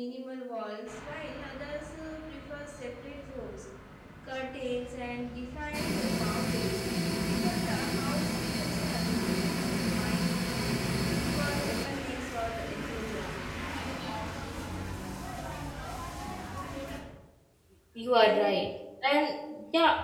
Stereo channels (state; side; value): identical; both; correlation 1.00